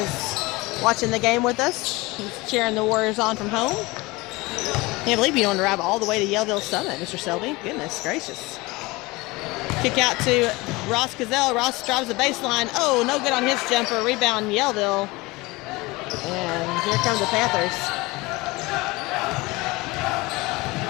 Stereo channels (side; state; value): right; quieter; 22.6 dB